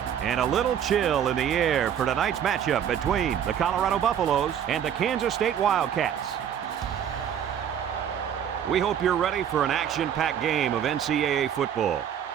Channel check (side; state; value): left; quieter; 9.1 dB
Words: And a little chill in the air for tonight's matchup between the Colorado Buffaloes and the Kansas State Wildcats. We hope you're ready for an action-packed game of NCAA football.